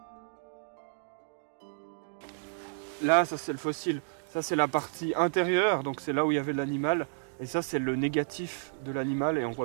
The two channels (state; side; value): silent; left; digital silence